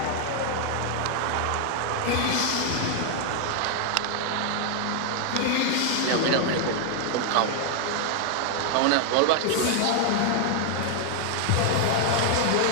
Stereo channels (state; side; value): different; both; correlation 0.00